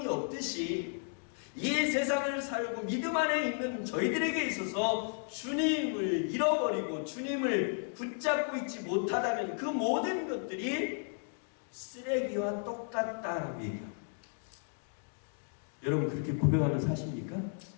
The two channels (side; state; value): right; silent; 55 dB below the other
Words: 없듯이 이 세상을 살고 믿음 안에 있는 저희들에게 있어서 주님을 잃어버리고 주님을 붙잡고 있지 못하다면 그 모든 것들이 쓰레기와 똑같다라고 얘기합니다. 여러분 그렇게 고백하며 사십니까?